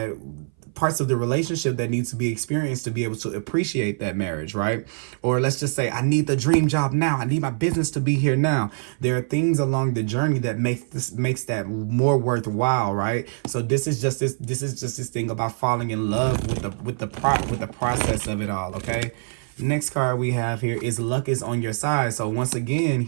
parts of the relationship that needs to be experienced to be able to appreciate that marriage, right? Or let's just say, I need the dream job now. I need my business to be here now. There are things along the journey that makes that more worthwhile, right? So this is just this thing about falling in love with the process of it all, okay? Next card we have here is luck is on your side. So once again,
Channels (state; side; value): silent; left; 58 dB below the other